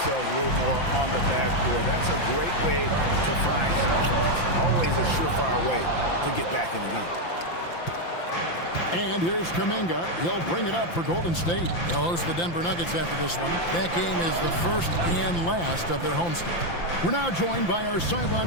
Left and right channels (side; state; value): right; late; 5.8 ms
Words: a little more on the backboard. That's a great way to find confidence. Always a surefire way to get back in the game. And here's Kuminga. He'll bring it up for Golden State. They'll host the Denver Nuggets after this one. That game is the first and last of their homestand. We're now joined by our